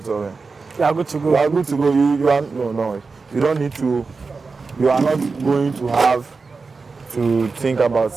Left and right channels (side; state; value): left; quieter; 4.4 dB